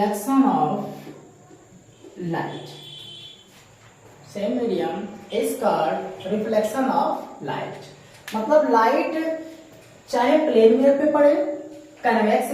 of light. Same medium is called reflection of light. मतलब light चाहे plane mirror पे पड़े, convex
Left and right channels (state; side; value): identical; both; correlation 1.00